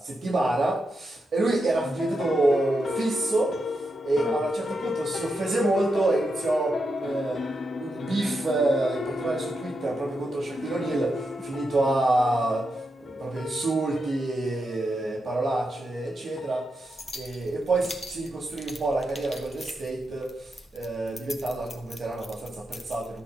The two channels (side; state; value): both; normal; correlation 0.85